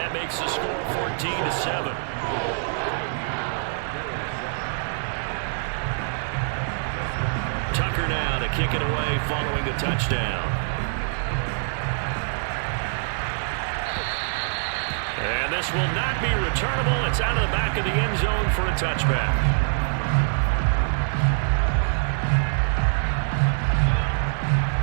makes the score 14-7. Tucker now to kick it away following the touchdown. And this will not be returnable. It's out of the back of the end zone for a touchback.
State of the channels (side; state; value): left; silent; 58 dB below the other